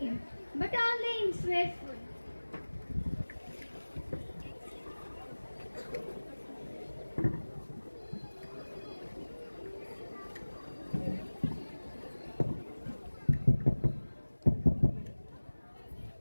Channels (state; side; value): inverted; both; correlation -1.00